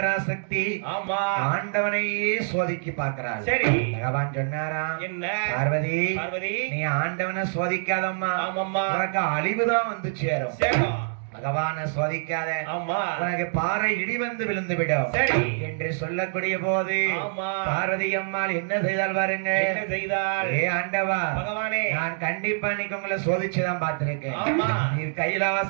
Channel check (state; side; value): silent; left; digital silence